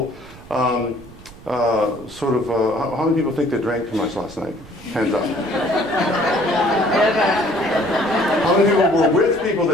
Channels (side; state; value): right; noise; rumble, 19 dB below the sound